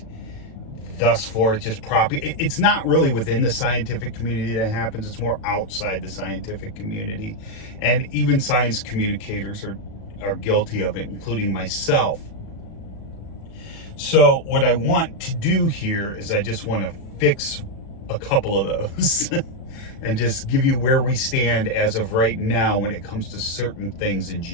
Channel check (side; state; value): right; late; 36 ms